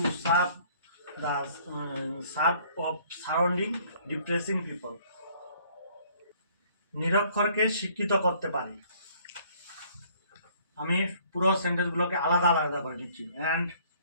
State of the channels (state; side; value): inverted; both; correlation -0.59